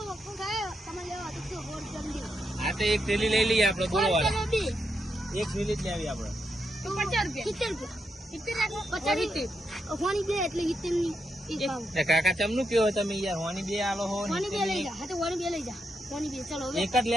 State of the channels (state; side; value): normal; both; correlation 0.83